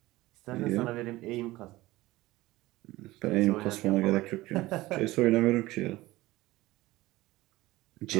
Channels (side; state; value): left; quieter; 18.4 dB